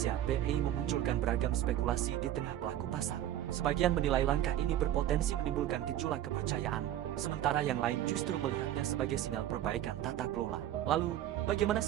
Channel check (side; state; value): left; quieter; 12.3 dB